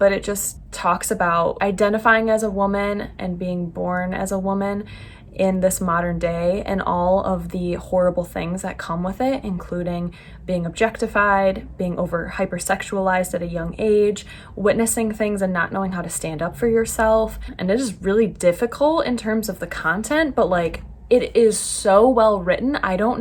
it just talks about identifying as a woman and being born as a woman in this modern day and all of the horrible things that come with it, including being objectified, being hypersexualized at a young age, witnessing things and not knowing how to stand up for yourself. And it is really difficult in terms of the content, but like, it is so well written. I don't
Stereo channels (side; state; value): both; identical; correlation 1.00